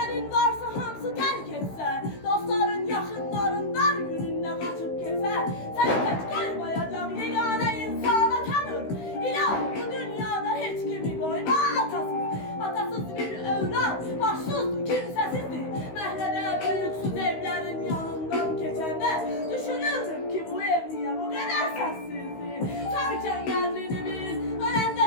varsa hamsı terk etse, dostların yakınların dar gününde kaçıp kese, seni tek koymayacak yegane insana tanır. İlah bu dünyada hiç kimi koyma atasız. Atasız bir evlat, başsızdı, kimsesizdi. Mehlede büyüksüz evlerin yanından geçende, düşünürdüm ki bu ev niye bu kadar sessizdi. Sarken yerini bil,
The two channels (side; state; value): right; late; 16 ms